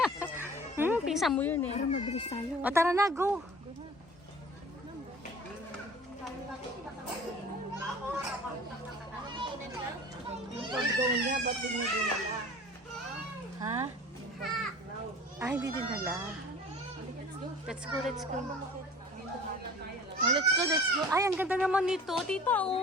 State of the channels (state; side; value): normal; both; correlation 0.44